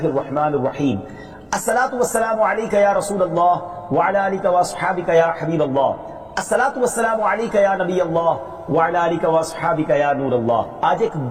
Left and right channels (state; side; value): identical; both; correlation 1.00